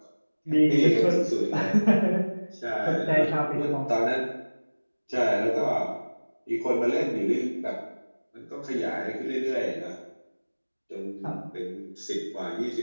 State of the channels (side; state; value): both; inverted; correlation -1.00